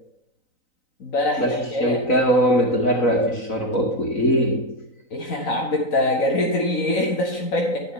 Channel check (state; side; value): late; right; 3.9 ms